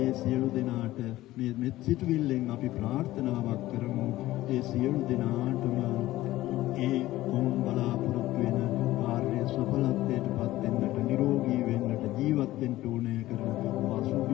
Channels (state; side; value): quieter; right; 16.3 dB